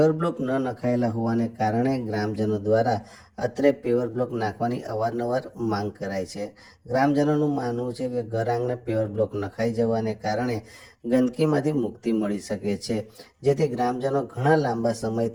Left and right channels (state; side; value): identical; both; correlation 1.00